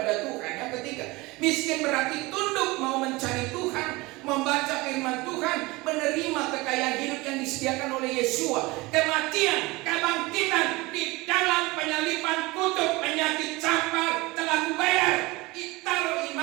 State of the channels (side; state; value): left; quieter; 22.4 dB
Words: Tuhan. Yang ketiga, miskin berarti tunduk, mau mencari Tuhan, membaca firman Tuhan, menerima kekayaan hidup yang disediakan oleh Yesua. Kematian, kebangkitan di dalam penyaliban, kutuk, penyakit, campak telah kubayar. Taruh